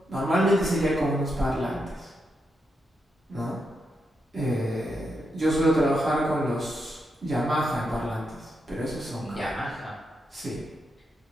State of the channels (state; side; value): normal; both; correlation 0.84